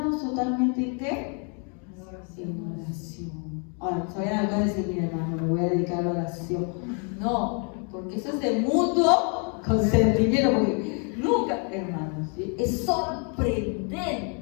totalmente en ¿qué? En oración. Ahora, todavía acaba de decir, mira hermano, me voy a dedicar a la oración. No, porque eso es de mutuo consentimiento, porque nunca, hermanos, ¿sí? Es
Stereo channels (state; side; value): quieter; right; 38.8 dB